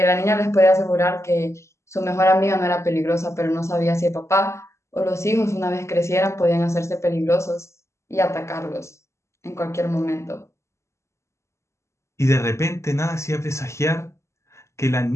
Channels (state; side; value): late; right; 0.13 ms